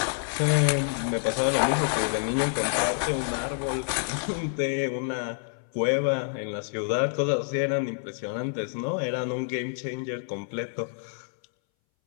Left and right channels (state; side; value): silent; right; 60 dB below the other